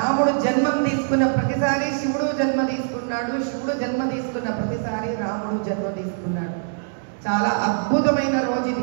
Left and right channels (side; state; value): left; silent; digital silence